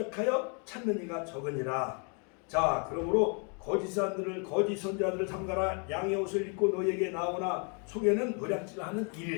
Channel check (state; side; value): quieter; right; 37.8 dB